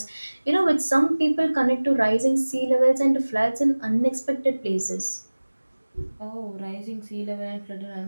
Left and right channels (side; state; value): both; inverted; correlation -1.00